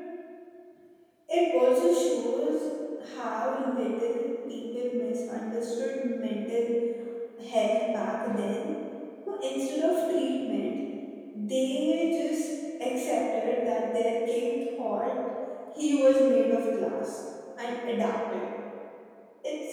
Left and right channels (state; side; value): identical; both; correlation 1.00